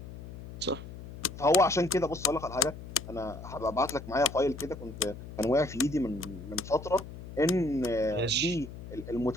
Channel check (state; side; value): noise; left; hum, 12 dB below the sound